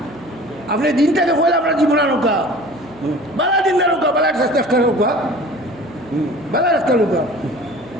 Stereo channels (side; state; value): right; noise; hum, 22 dB below the sound